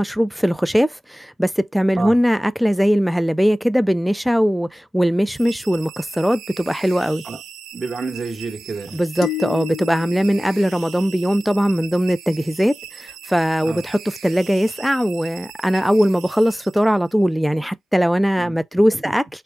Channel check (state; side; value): normal; both; correlation 0.98